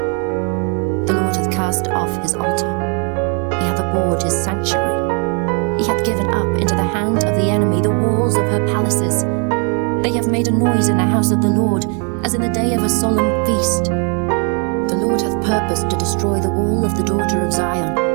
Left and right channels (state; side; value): quieter; left; 38.1 dB